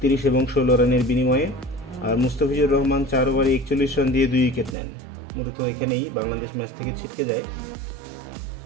এবং 16 রানের বিনিময়ে, আর মুস্তাফিজুর রহমান 4 ওভারে 41 রান দিয়ে 2 উইকেট নেন। মূলত এখানেই বাংলাদেশ ম্যাচ থেকে ছিটকে যায়।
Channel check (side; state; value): left; drops out; at 4.8 s